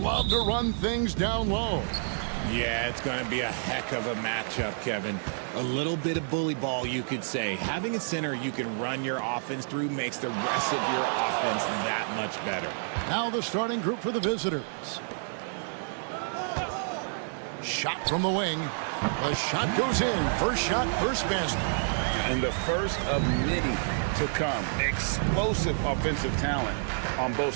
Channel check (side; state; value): left; silent; digital silence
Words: to run things down low. Yeah, it's going to be a heck of a matchup, Kevin. A little bit of bully ball, you could say. Having a center you can run your offense through makes the rest of your offense that much better. Now the starting group for the visitors. Shot from the wing. The shot goes in. First shot, first basket. And the first of many to come. Explosive offensive talent on both